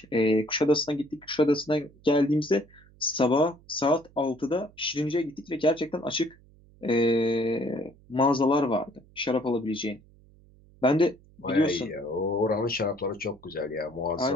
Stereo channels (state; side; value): noise; right; hum, 27 dB below the sound